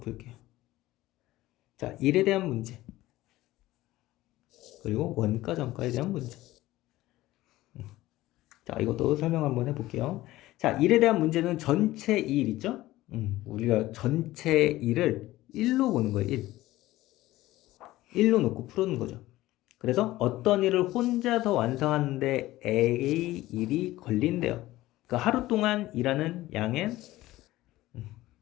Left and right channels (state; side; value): quieter; right; 16.8 dB